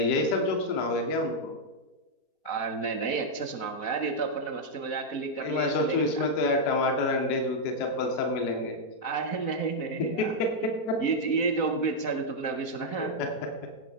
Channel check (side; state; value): right; late; 4.0 ms